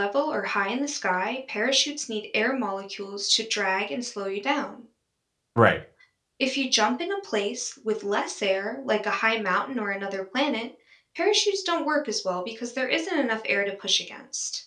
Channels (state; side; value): identical; both; correlation 1.00